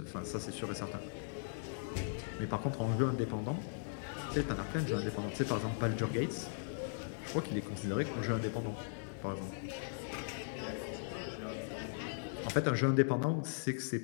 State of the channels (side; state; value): right; silent; 52 dB below the other